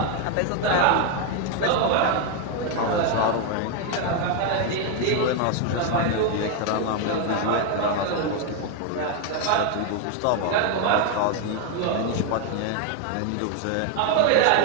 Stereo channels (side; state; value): both; different; correlation 0.01